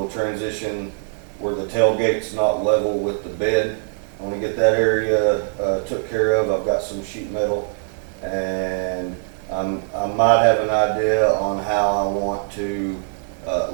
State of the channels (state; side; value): silent; left; digital silence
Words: transition where the tailgate's not level with the bed. I want to get that area took care of. I've got some sheet metal, and I might have an idea on how I want to